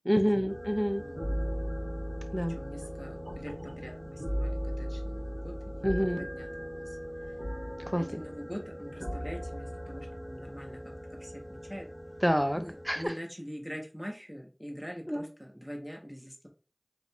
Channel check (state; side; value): identical; both; correlation 1.00